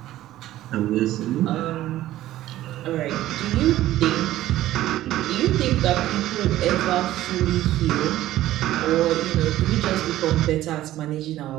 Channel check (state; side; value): quieter; left; 14.5 dB